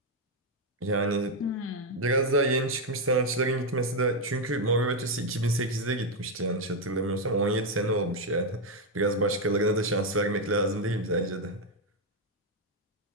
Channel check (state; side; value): normal; both; correlation 0.03